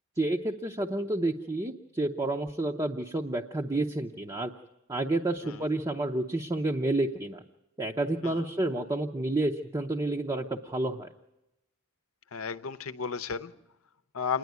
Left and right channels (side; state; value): both; normal; correlation 0.68